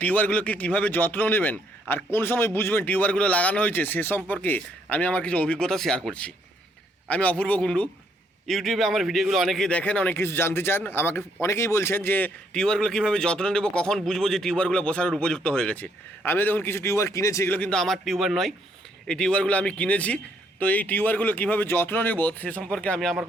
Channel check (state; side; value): normal; both; correlation 0.70